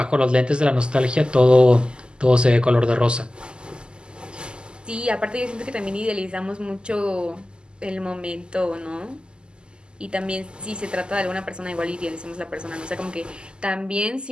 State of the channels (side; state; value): left; late; 0.049 ms